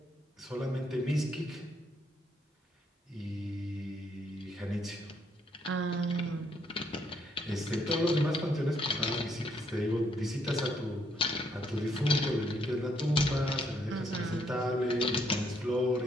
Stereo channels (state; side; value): normal; both; correlation 0.72